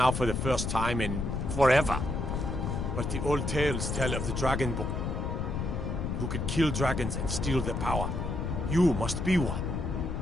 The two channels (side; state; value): left; noise; rumble, 2 dB below the sound